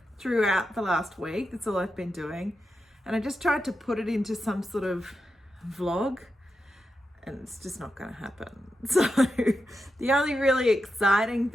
throughout the last week. That's all I've been doing. And I just tried to put it into some sort of vlog and it's just not going to happen. So the only really exciting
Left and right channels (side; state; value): both; normal; correlation 0.88